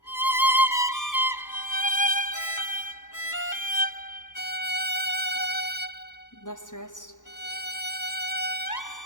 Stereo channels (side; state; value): right; late; 0.86 ms